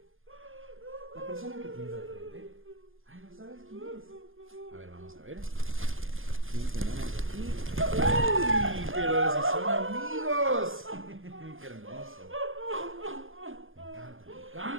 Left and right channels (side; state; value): left; late; 0.59 ms